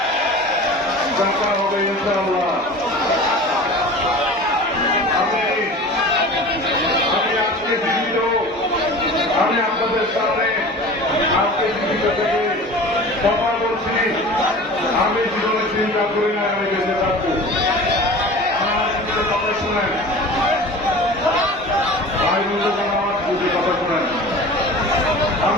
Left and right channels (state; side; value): normal; both; correlation 0.38